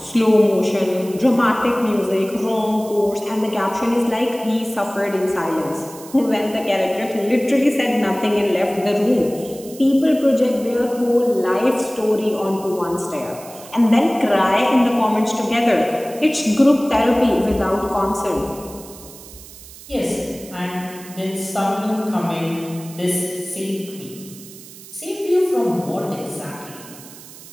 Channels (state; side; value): noise; right; hiss, 18 dB below the sound